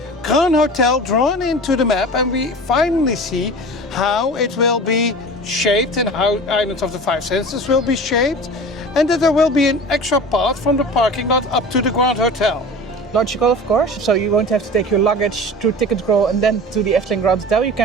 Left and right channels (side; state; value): both; normal; correlation 0.36